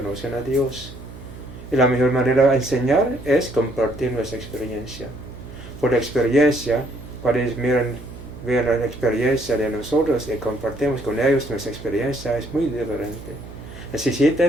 a Dios. Y la mejor manera de enseñar es compartir nuestra experiencia. Por la experiencia, cuando ellos ven la experiencia de nosotros y compartimos con ellos nuestra experiencia, es muy diferente.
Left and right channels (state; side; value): noise; right; hum, 14 dB below the sound